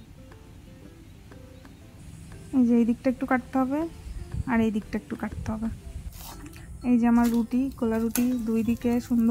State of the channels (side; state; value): both; identical; correlation 1.00